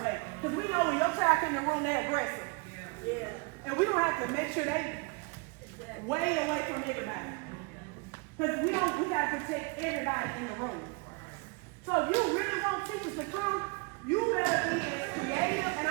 way. Because we know when your child comes in the room, they're aggressive. Yeah. And we don't have to make sure they way away from everybody. Because we got to protect everybody in the room. So if you really want teachers to come, you better be as creative, and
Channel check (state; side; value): quieter; left; 30.4 dB